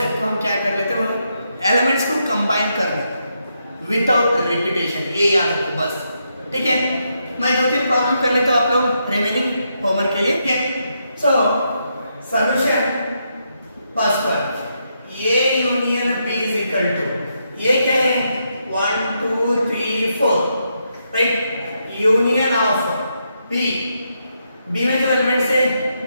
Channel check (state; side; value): inverted; both; correlation -0.80